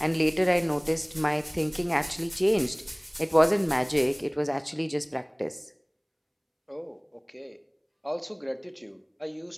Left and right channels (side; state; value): both; identical; correlation 1.00